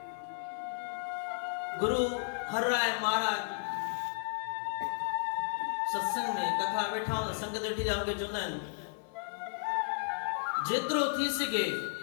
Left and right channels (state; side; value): silent; right; 55 dB below the other